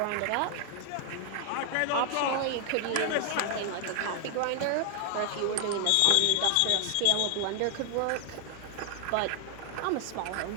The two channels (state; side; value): different; both; correlation 0.00